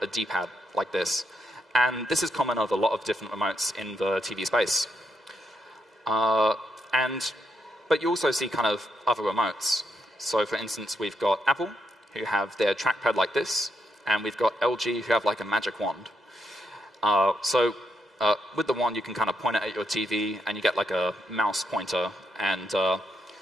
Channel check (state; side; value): normal; both; correlation 0.80